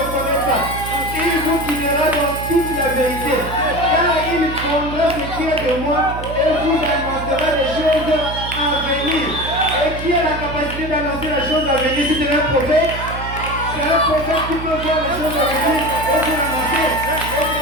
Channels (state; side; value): noise; right; hum, 8 dB below the sound